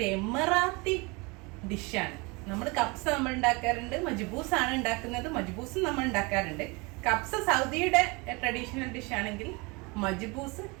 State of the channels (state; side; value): quieter; left; 27.2 dB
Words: എമിറാത്തി ഡിഷാണ്. നമ്മൾ കപ്സ നമ്മൾ ഉണ്ടാക്കാറുണ്ട്, മജ്ബൂസ് ആണ് ഉണ്ടാക്കുന്നത്. മജ്ബൂസും നമ്മൾ ഉണ്ടാക്കാറുണ്ട്. കപ്സ സൗദിയുടെ ട്രഡീഷണൽ ഡിഷ് ആണെങ്കിൽ മജ്ബൂസ്